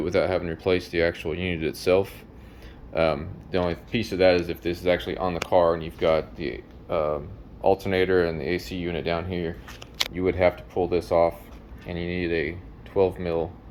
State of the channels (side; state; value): both; identical; correlation 1.00